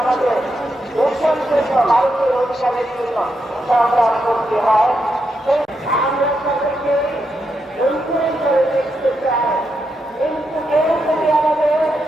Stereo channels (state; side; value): normal; both; correlation 0.83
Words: ভারতের অধিকারের জন্য সংগ্রাম করতে হয়। আমরা তাদেরকে দেখতে চাই, কিন্তু কেউ যদি আমাদের